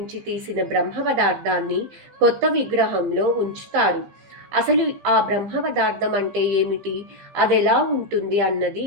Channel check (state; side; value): late; left; 15 ms